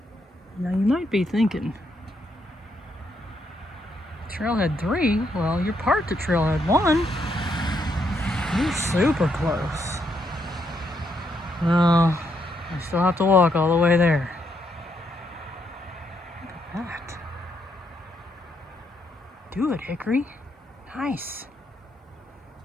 Now you might be thinking, trailhead 3? Well, you're part to trailhead 1. You're super close. Well, I still have to walk all the way there. Look at that. Do it, Hickory. Nice.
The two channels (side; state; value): both; normal; correlation 0.77